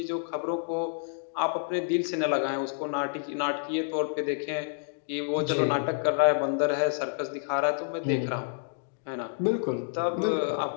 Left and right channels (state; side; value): silent; right; digital silence